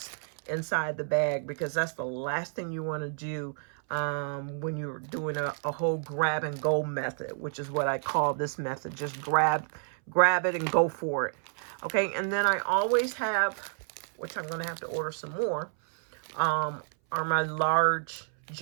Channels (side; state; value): left; silent; 58 dB below the other